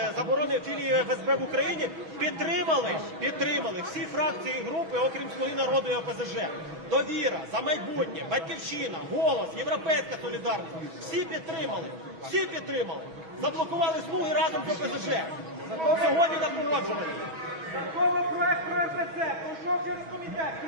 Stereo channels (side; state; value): left; late; 6.2 ms